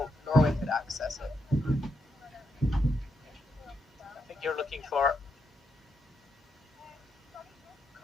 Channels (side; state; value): both; normal; correlation 0.81